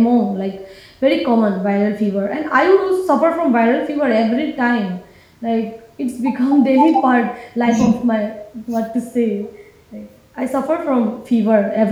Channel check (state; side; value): identical; both; correlation 1.00